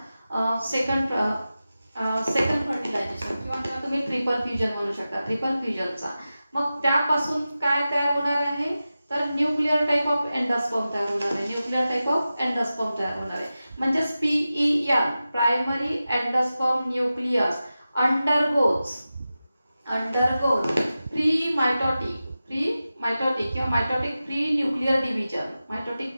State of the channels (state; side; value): inverted; both; correlation -0.94